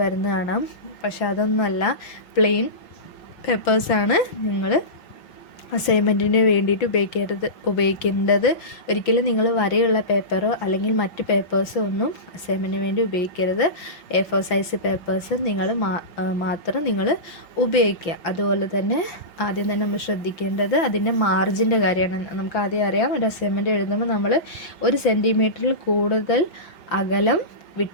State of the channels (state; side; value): late; right; 5.6 ms